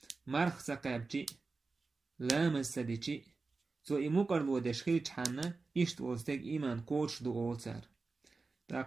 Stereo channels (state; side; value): quieter; left; 4.0 dB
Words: مرخ سقابتي لا مسدتي سو إمو قربو دشخيج حانا إشت وستيق إيمان كوش دو أولتار